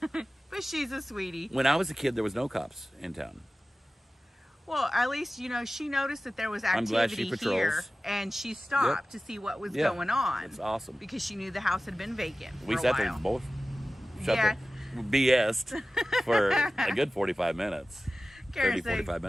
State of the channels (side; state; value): both; normal; correlation 0.96